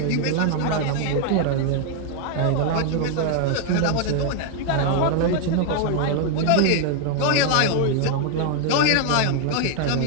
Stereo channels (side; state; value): both; different; correlation 0.00